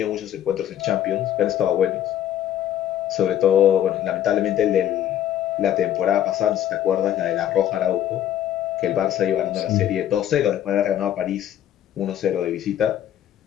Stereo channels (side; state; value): right; quieter; 11.1 dB